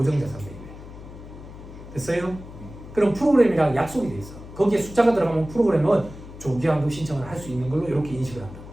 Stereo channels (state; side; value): noise; left; hum, 15 dB below the sound